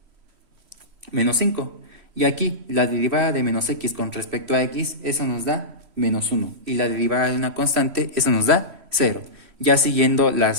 menos 5. Y aquí la derivada de menos x con respecto a x, eso nos da menos 1. Y la derivada de una constante, eso nos da 0. Ya siguiendo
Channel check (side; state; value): left; late; 3.1 ms